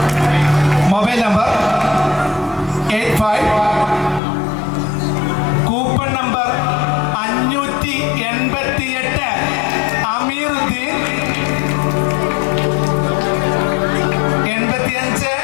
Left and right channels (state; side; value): drops out; right; at 4.2 s